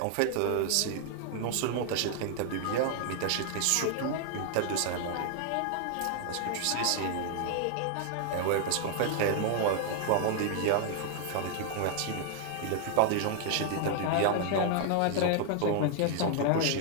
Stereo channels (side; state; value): both; different; correlation 0.00